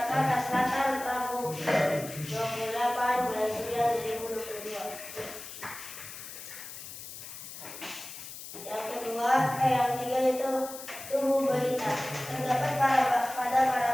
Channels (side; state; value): left; noise; hiss, 12 dB below the sound